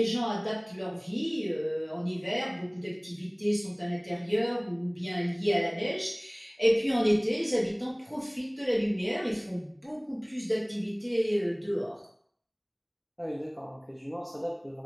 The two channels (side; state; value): both; identical; correlation 1.00